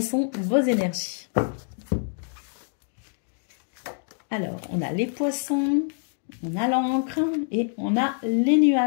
sont vos énergies? Alors, on a les poissons, on a l'encre et on a les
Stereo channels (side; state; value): right; silent; 61 dB below the other